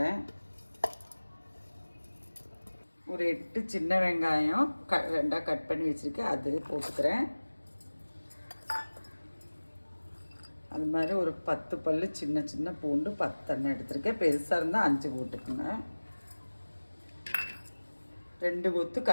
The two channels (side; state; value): both; inverted; correlation -1.00